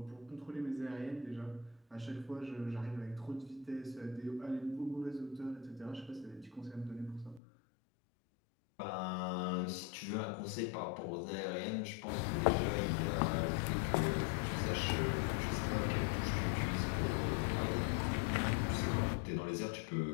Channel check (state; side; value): drops out; right; at 7.4 s